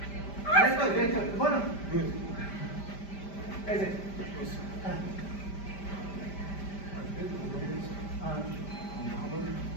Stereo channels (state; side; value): late; right; 5.1 ms